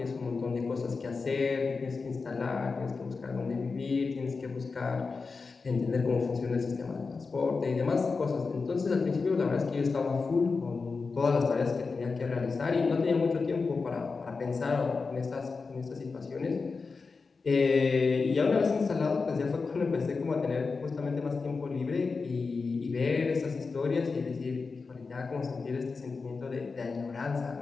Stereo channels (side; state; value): right; quieter; 4.5 dB